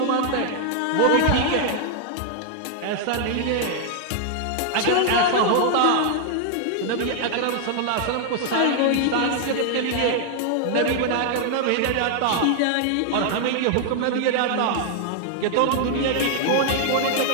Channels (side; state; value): both; different; correlation 0.00